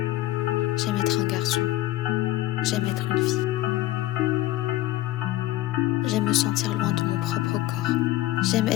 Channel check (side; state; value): right; quieter; 15.9 dB